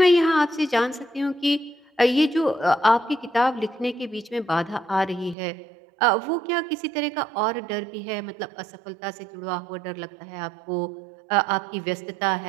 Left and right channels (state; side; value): drops out; left; at 5.4 s